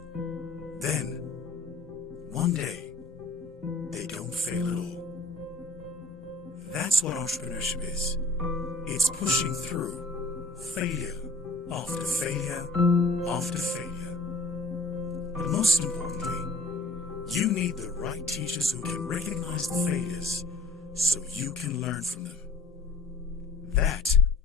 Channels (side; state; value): right; quieter; 3.1 dB